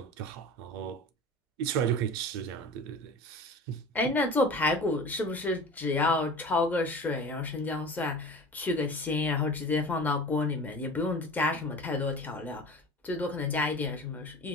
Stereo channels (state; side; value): normal; both; correlation 0.37